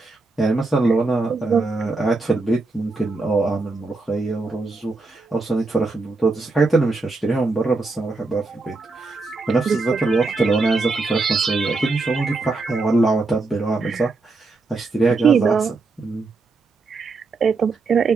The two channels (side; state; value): left; quieter; 3.6 dB